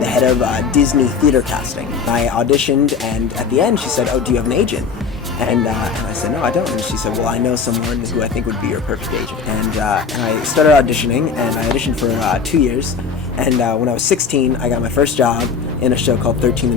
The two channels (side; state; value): right; quieter; 5.7 dB